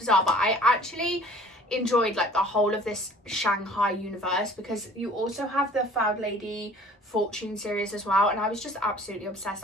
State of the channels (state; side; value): normal; both; correlation 0.49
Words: but I actually enjoyed like the whole of this Shanghai universe, because you also have the Found Lady Fortune series as well, and I was just absolutely